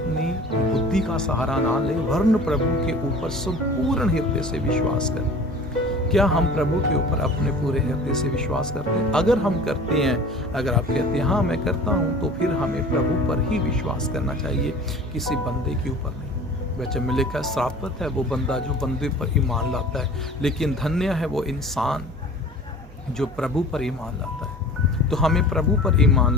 बुद्धि का सहारा ना ले, वरन प्रभु के ऊपर संपूर्ण हृदय से विश्वास कर। क्या हम प्रभु के ऊपर अपने पूरे हृदय से विश्वास करते हैं? अगर हम करते हैं, अगर आप कहते हैं हाँ मैं करता हूँ, तो फिर हमें प्रभु पर ही विश्वास करना चाहिए, किसी बंदे के ऊपर नहीं। वचन में लिखा है, श्रापित है वो बंदा जो बंदे पर ईमान लाता है, लेकिन धन्य है वो इंसान जो प्रभु पर ईमान लाता है। तो हमें प्रभु पर ईमान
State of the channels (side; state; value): both; normal; correlation 0.42